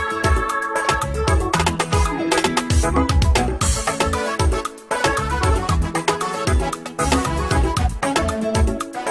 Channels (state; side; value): identical; both; correlation 1.00